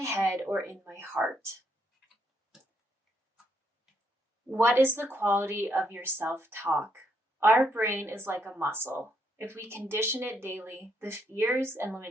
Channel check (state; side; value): normal; both; correlation 0.75